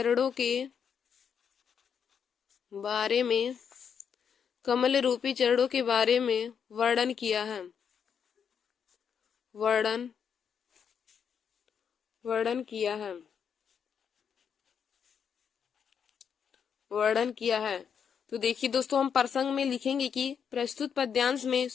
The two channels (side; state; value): right; quieter; 7.3 dB